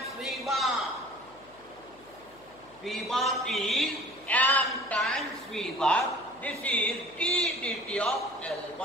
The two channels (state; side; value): noise; left; hum, 27 dB below the sound